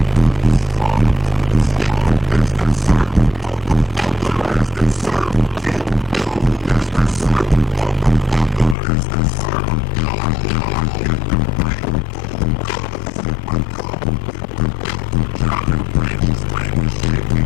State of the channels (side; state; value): right; drops out; at 8.8 s